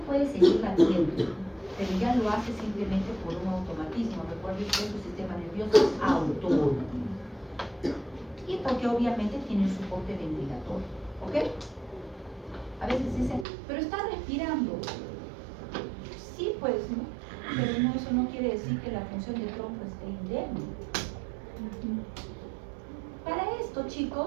puede seguir latiendo, pero ya lo hace simplemente por un automatismo. Recuerden que su sistema nervioso es autónomo. Y porque obviamente tiene un soporte ventilatorio. ¿Ok? A veces dicen, pero está respirando. Sí, pues, ¿no? Pero no, eso no quiere decir que la función del tronco esté indemne. Para esto,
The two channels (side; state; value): left; drops out; at 13.5 s